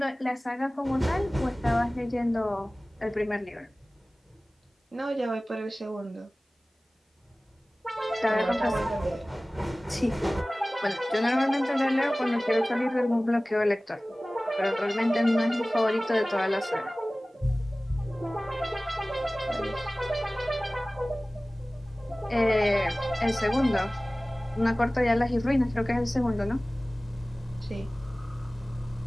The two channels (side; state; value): both; normal; correlation 0.98